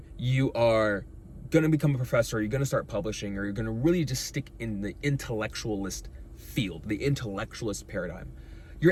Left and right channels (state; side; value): identical; both; correlation 1.00